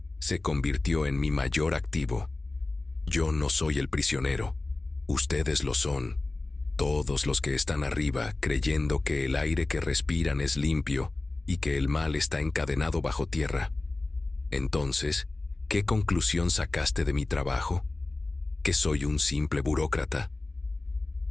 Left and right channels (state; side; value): quieter; right; 3.1 dB